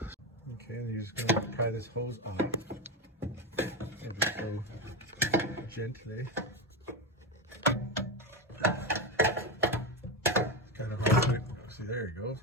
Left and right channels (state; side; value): normal; both; correlation 0.13